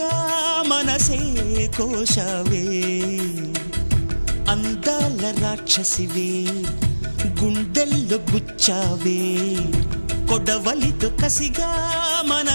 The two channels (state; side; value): inverted; both; correlation -1.00